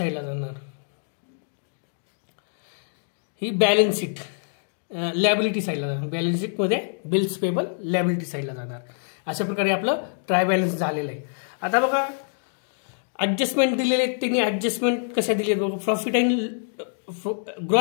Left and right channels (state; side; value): silent; right; digital silence